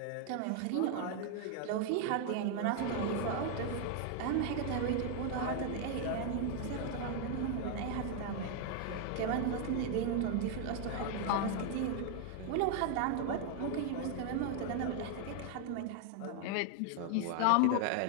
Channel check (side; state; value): both; different; correlation 0.00